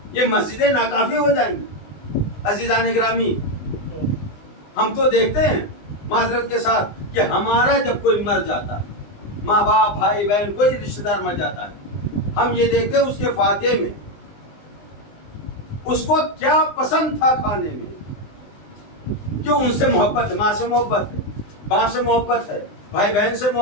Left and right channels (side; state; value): right; late; 20 ms